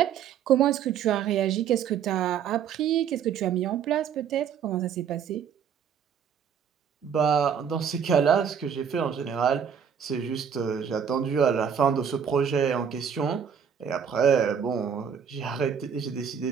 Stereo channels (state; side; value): quieter; left; 7.7 dB